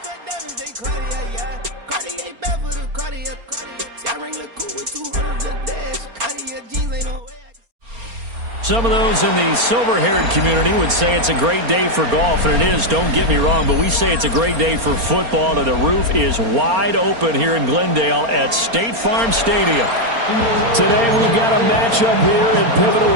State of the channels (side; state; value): left; late; 4.3 ms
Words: cut diamonds, they Cartier, yeah. Cartier bad for the Cartier, Cartier. I ring look cool with 200 the dash. Cartier jeans ain't no way. Some of those in the silver-haired community would say it's a great day for golf, and it is, don't get me wrong, but we say it's a great day for football, and the roof is wide open here in Glendale at State Farm Stadium. Today we've got a matchup here in pivotal